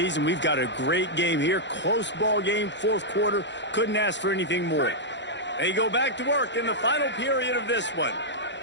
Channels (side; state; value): right; late; 0.52 ms